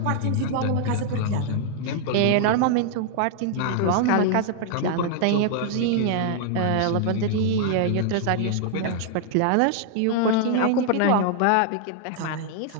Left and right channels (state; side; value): different; both; correlation 0.00